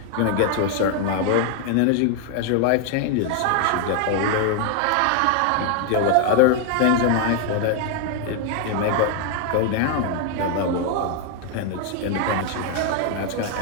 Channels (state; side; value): different; both; correlation 0.00